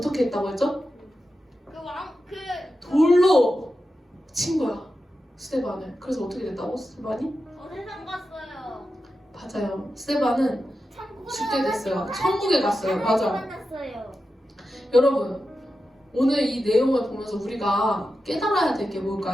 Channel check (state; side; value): normal; both; correlation 0.91